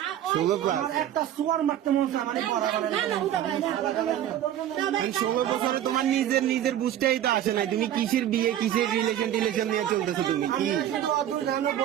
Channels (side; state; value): left; quieter; 11.5 dB